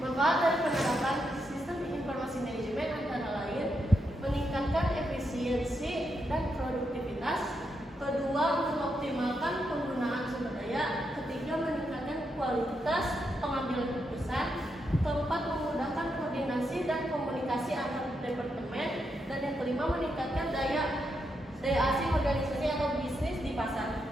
Manfaat dari penerapan sistem informasi manajemen antara lain meningkatkan efisiensi dan produktivitas. Kedua, mengoptimalkan penggunaan sumber daya. Ketiga, meningkatkan kualitas pengambilan keputusan. Keempat, memudahkan koordinasi dan komunikasi antar departemen. Dan yang kelima, meningkatkan daya asing organisasi atau bisnis di pasar.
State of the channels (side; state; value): both; normal; correlation 0.82